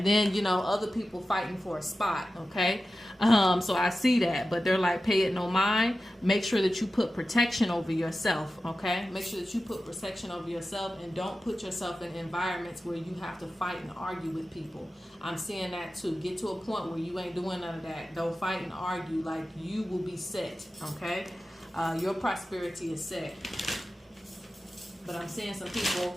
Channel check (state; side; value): normal; both; correlation 0.93